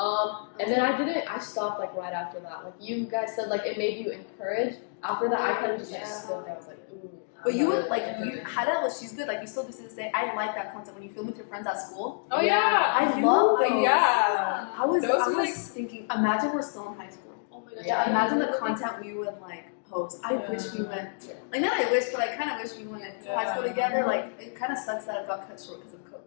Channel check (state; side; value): silent; right; digital silence